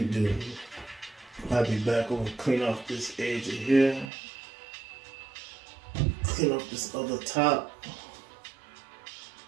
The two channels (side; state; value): left; drops out; at 4.1 s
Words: to do. I'll be back over, clean off this edge of here. Clean up this other top.